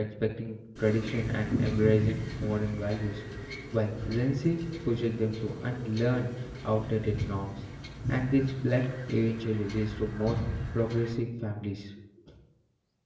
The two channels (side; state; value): both; identical; correlation 1.00